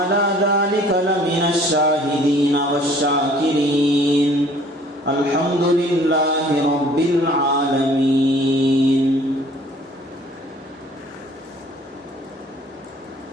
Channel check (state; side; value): normal; both; correlation 0.55